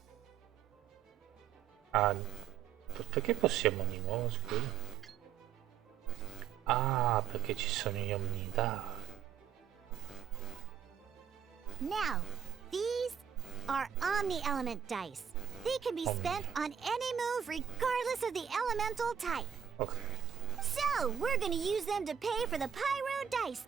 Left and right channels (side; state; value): left; quieter; 8.5 dB